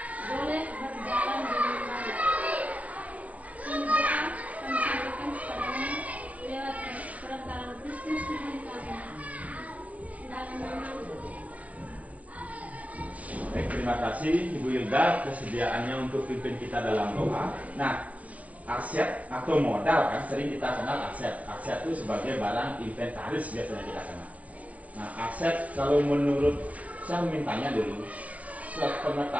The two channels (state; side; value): late; left; 0.067 ms